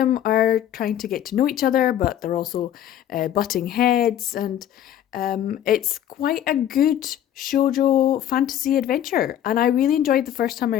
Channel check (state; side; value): quieter; right; 11.0 dB